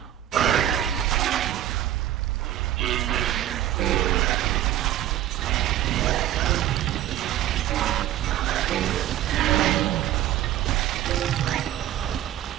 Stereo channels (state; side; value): quieter; left; 12.7 dB